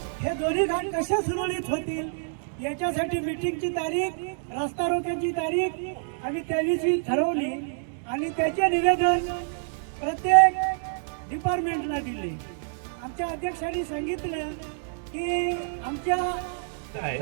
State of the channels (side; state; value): left; silent; 60 dB below the other